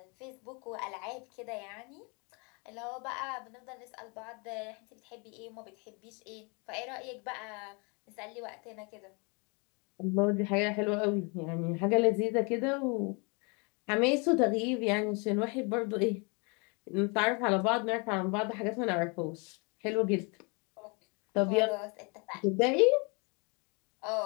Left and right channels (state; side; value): quieter; right; 32.3 dB